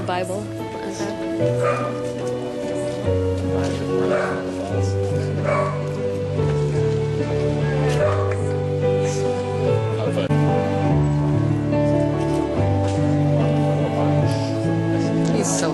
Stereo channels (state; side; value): identical; both; correlation 1.00